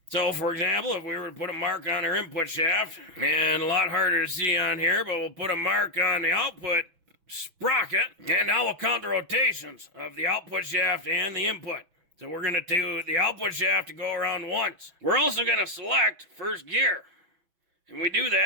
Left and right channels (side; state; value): left; late; 6.1 ms